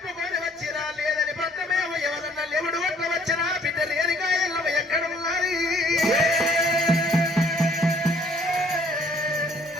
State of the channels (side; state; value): both; normal; correlation 0.60